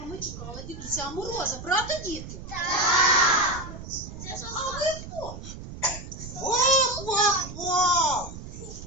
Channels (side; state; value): right; noise; rumble, 11 dB below the sound